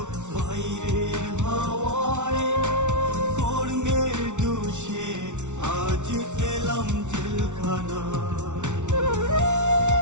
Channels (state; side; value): late; left; 0.84 ms